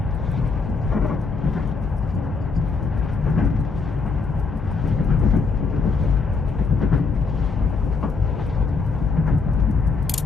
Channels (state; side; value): quieter; right; 4.4 dB